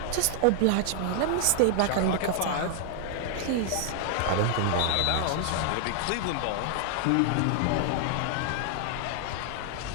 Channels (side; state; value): both; different; correlation 0.00